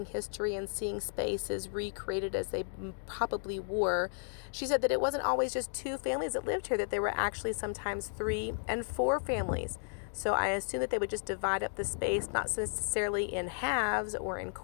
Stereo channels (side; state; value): right; silent; digital silence